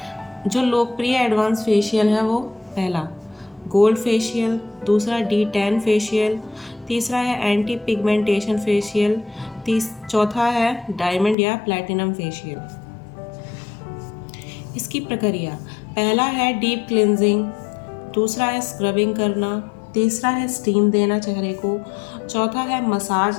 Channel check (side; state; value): right; drops out; at 11.4 s